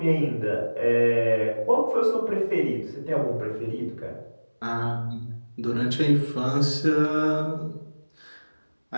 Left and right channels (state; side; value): inverted; both; correlation -1.00